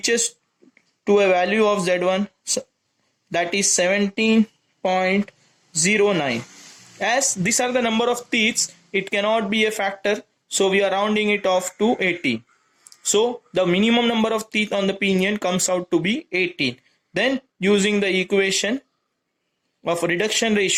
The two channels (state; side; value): identical; both; correlation 1.00